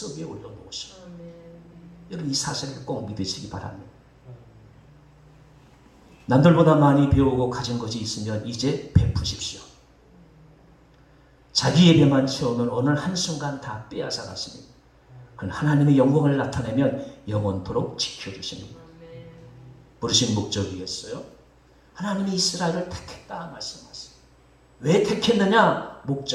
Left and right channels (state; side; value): identical; both; correlation 1.00